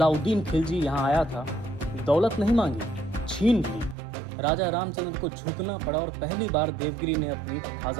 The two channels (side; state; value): left; drops out; at 4.0 s